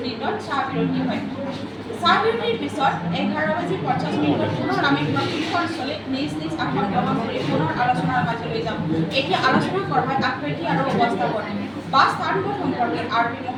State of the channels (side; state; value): both; identical; correlation 1.00